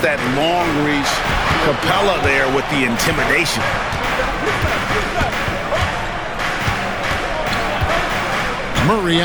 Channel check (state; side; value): identical; both; correlation 1.00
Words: that long reach. Capella there with the intimidation. Murray